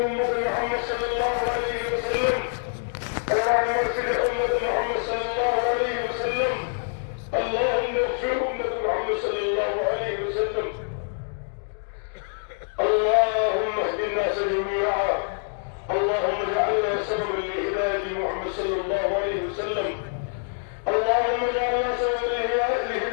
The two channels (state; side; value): silent; right; digital silence